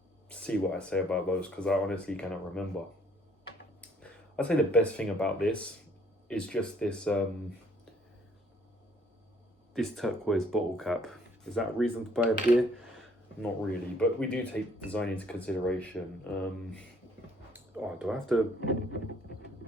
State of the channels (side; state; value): both; normal; correlation 0.62